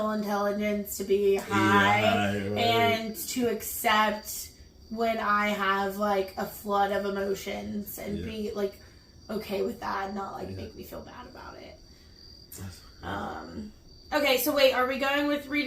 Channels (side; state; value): both; identical; correlation 1.00